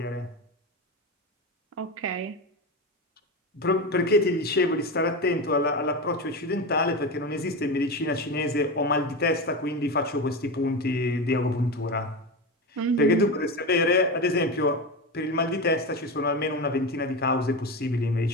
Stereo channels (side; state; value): both; normal; correlation 0.20